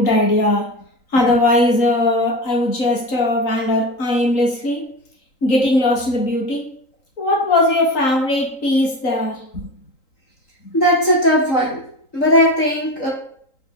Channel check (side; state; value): right; late; 3.8 ms